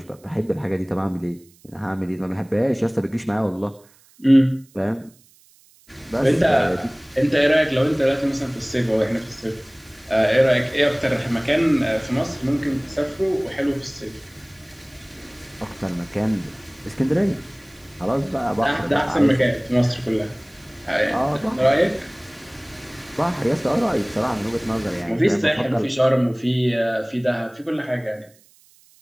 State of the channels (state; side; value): noise; right; hiss, 29 dB below the sound